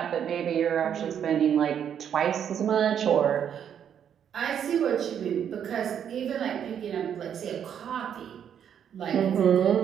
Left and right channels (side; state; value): left; quieter; 8.7 dB